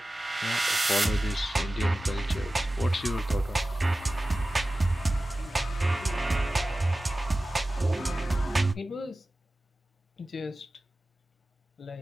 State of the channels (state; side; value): normal; both; correlation 0.96